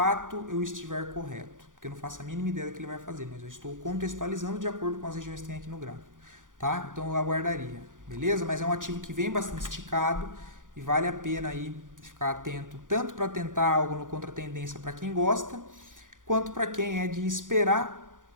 eu estiver correto. Porque eu não faço a mínima ideia do que ele vai fazer, mas eu estou contextualizando de acordo com as regiões que tem aqui no gráfico. Tá? Então eu aguardaria, beleza? Mas é um ativo que vem bastante esticado e vale a pena aí ficar atento, tanto para tentar algo no contratendência para quem gosta, quanto para quem é de esperar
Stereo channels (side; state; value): left; late; 0.88 ms